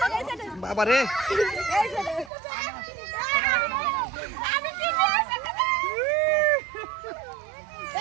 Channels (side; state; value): left; drops out; at 2.3 s